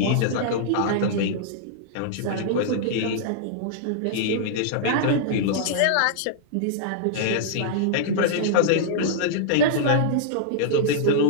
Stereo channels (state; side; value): different; both; correlation -0.02